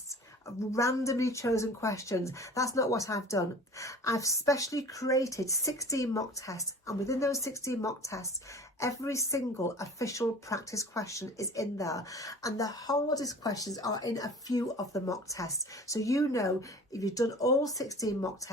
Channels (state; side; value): normal; both; correlation 0.42